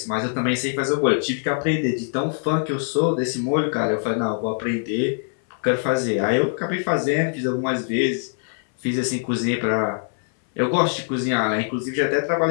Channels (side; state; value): right; silent; 63 dB below the other